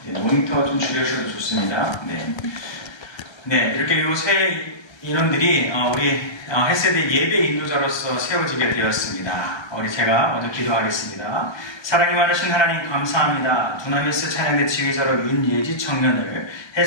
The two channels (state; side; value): late; right; 1.3 ms